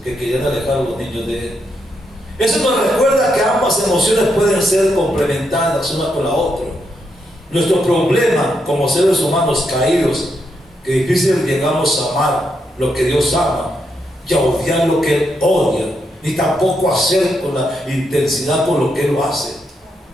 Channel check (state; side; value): normal; both; correlation 0.81